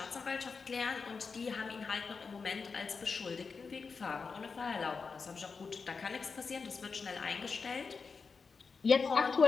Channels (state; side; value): quieter; right; 5.0 dB